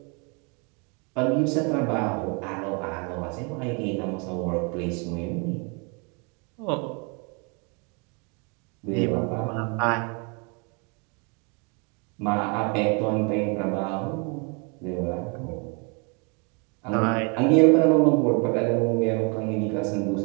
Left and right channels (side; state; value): left; quieter; 33.6 dB